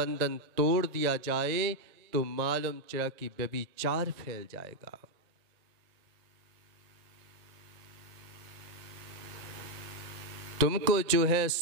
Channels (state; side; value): late; left; 1.8 ms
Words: तोड़ दिया जाए तो मालूम चला कि व्यभिचार फैल जाएगा। तुमको जो है